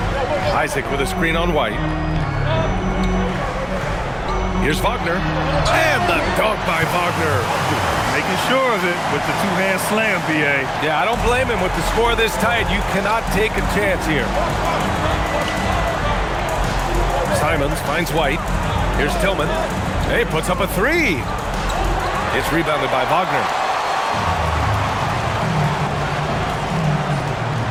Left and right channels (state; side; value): identical; both; correlation 1.00